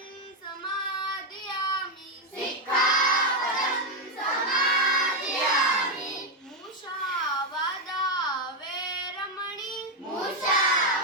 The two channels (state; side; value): normal; both; correlation 0.04